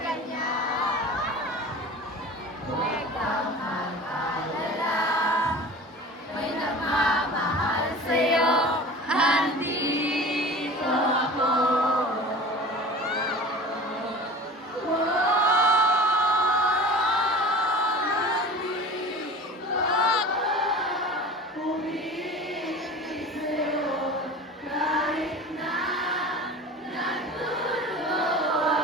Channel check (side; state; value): both; normal; correlation 0.37